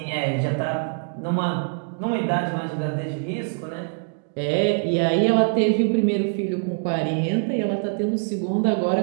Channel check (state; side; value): silent; left; 63 dB below the other